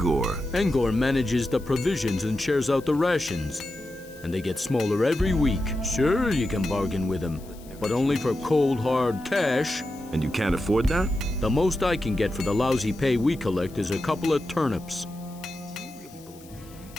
Engor manages the provisions and shares out the rations. And they get smaller every week. Sure, you can bargain with him, but only for cold, hard cash. And you can't afford that? The most I can get for the lousy pay we collect is a couple of turnips.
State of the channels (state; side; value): noise; left; hiss, 23 dB below the sound